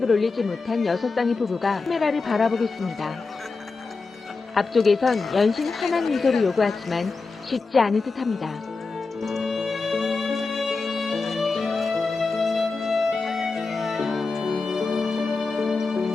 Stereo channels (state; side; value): quieter; right; 4.1 dB